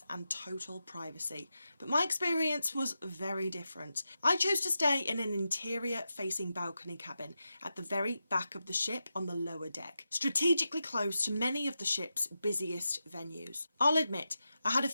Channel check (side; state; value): both; inverted; correlation -0.89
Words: and total privacy. But my experience was very different. I chose to stay in an interior-facing balcony cabin at the very back of the ship on the lower deck, strategically close to many of the ship's busiest venues. I'll admit, I had a